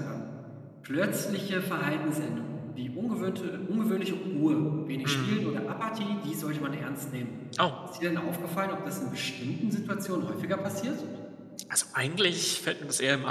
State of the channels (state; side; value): identical; both; correlation 1.00